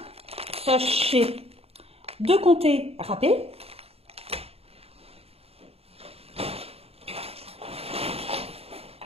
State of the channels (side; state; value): left; late; 0.29 ms